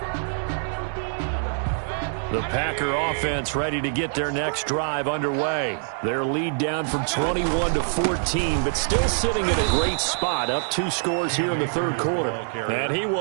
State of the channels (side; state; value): left; silent; digital silence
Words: The Packer offense ready to get their next drive underway. Their lead down from 21-14, but still sitting in a great spot, up 2 scores here in the third quarter. And he